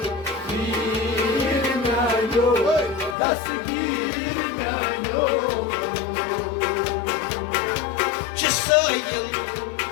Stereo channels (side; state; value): right; drops out; at 3.2 s